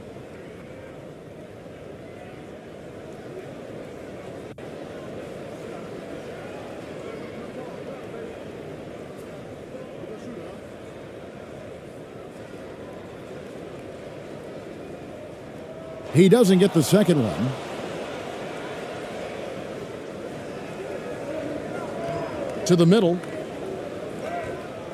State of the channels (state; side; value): identical; both; correlation 1.00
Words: He doesn't get the second one. To the middle.